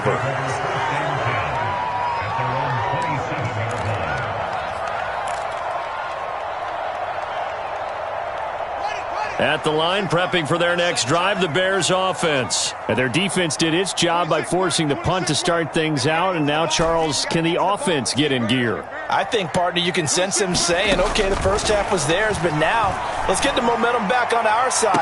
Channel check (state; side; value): identical; both; correlation 1.00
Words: At the line, prepping for their next drive, the Bears offense. And their defense did its job by forcing the punt to start things out. And now, Charles, can the offense get in gear? I think, partner, you can sense him saying, okay, the first half was theirs, but now let's get the momentum back on our